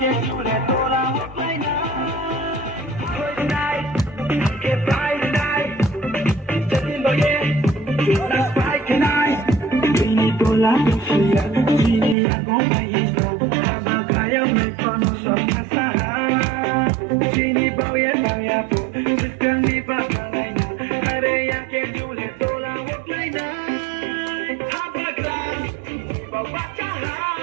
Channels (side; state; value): left; drops out; at 12.2 s